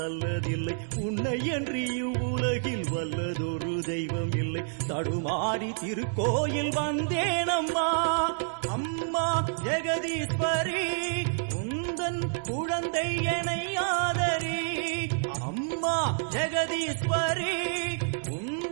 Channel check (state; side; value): silent; left; digital silence